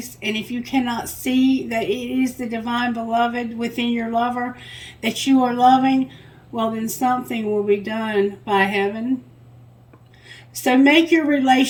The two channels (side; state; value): both; identical; correlation 1.00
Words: and if you cannot see that it is the divine beloved within your lover that you are loving, well, then something will be done by heaven. So make your